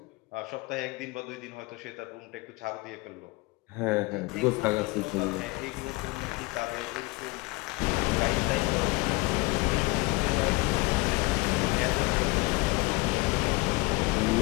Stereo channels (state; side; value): quieter; right; 24.7 dB